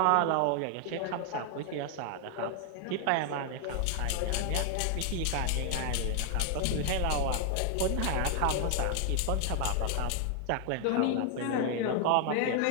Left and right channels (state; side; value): different; both; correlation 0.00